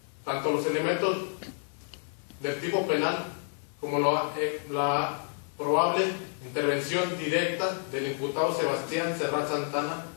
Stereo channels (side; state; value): right; silent; 58 dB below the other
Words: tanto los elementos del tipo penal como la probable intervención directa del imputado Sebastián Serrat Santana